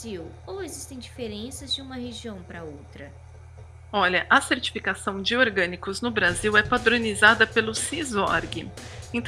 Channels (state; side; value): identical; both; correlation 1.00